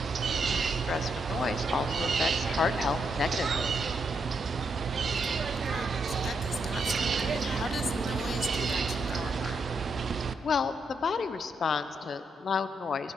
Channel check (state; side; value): normal; both; correlation 0.79